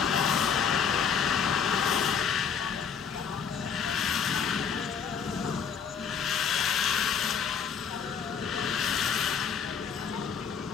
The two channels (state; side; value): quieter; right; 6.9 dB